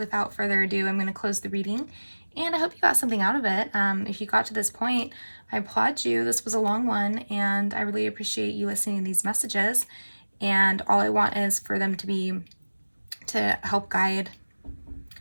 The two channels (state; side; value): inverted; both; correlation -1.00